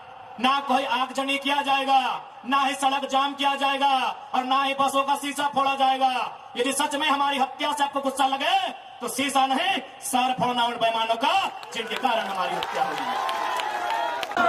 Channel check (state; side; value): identical; both; correlation 1.00